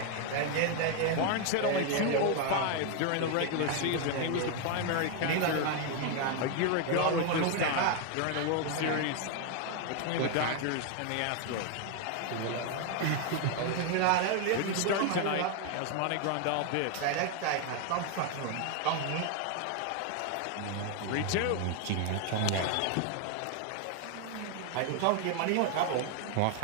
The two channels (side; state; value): both; different; correlation 0.01